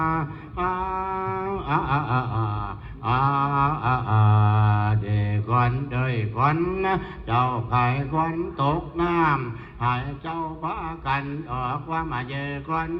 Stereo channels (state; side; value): identical; both; correlation 1.00